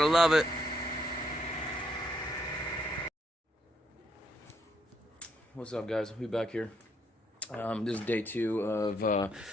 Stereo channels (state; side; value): normal; both; correlation 0.74